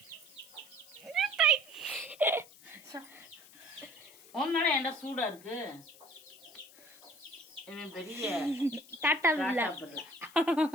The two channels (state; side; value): noise; left; hiss, 22 dB below the sound